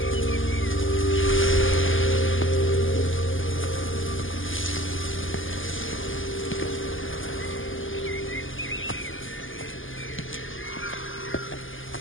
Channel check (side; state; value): right; late; 0.58 ms